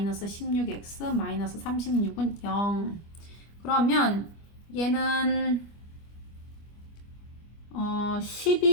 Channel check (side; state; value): right; late; 25 ms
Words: 16x 마이너스 36은 0. 그러면 얘는